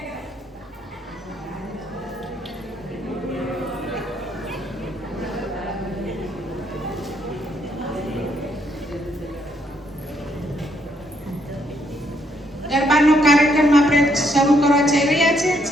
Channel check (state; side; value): normal; both; correlation 0.72